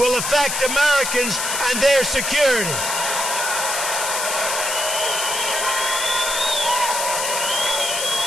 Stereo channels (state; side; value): noise; left; hiss, 1 dB below the sound